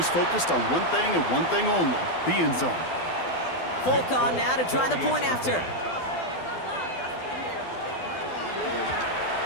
focused on one thing and one thing only, the end zone. Folk on now to try the point after.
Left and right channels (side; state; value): right; late; 12 ms